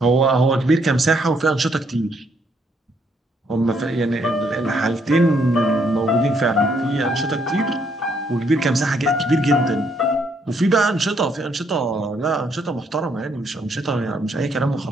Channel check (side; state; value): both; normal; correlation 0.71